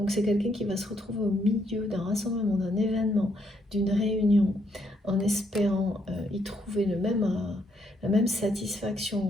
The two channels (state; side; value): normal; both; correlation 0.74